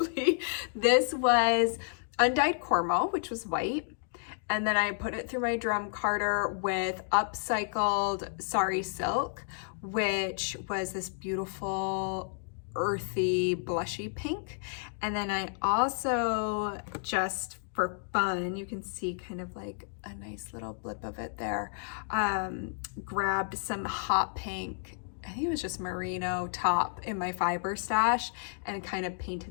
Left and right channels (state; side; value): silent; right; digital silence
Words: This was undyed cormo, which was white. And then I put it through my drum carder with upcycled sari silk, which was this beautiful earthy blushy pink. And then I also, just for fun, you can see kind of like a nice little blip of it there, grabbed some hot pink, I think it was just merino top in my fiber stash, and kind of